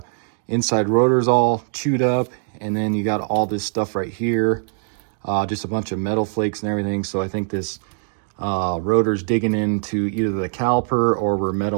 inside rotor is all chewed up, and then you got all this stuff right here, just a bunch of metal flakes and everything. So I think this rotor's digging into either the caliper or we're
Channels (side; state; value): left; silent; digital silence